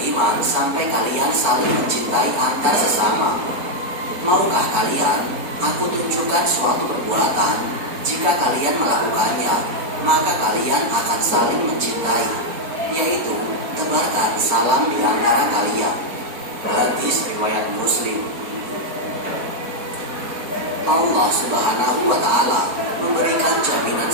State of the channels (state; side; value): late; left; 4.2 ms